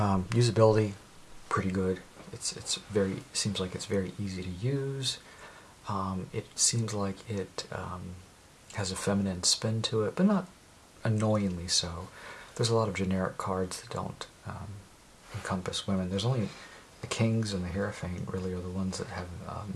pretty good. Seems like it's very easy to use. It seems like it has a feminine spin to it, but not annoyingly so. There's a lot of generic cards that don't encompass women. There's only the Kings and the Hierophant really are the ones that have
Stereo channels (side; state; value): both; identical; correlation 1.00